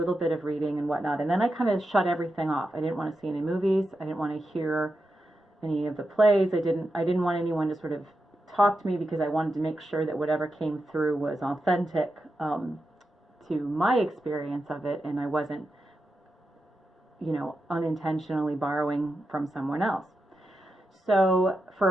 bit of reading and whatnot. And then I kind of shut everything off. I didn't want to see any movies. I didn't want to hear any of the plays. I didn't want anyone to sort of talk to me because I wanted to make sure that whatever came through was authentic to my experience of it, and I wasn't, unintentionally borrowing from someone else. So for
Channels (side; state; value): both; normal; correlation 0.88